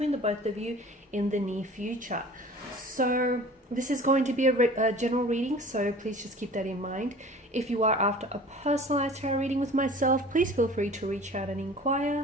the both of you in the near future. So this is going to be a general reading, so please just keep that in mind. If you are after a personalized tarot reading with myself, please feel free to reach out and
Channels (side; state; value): both; normal; correlation 0.43